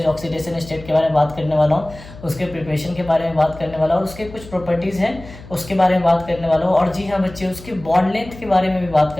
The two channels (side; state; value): left; noise; hum, 17 dB below the sound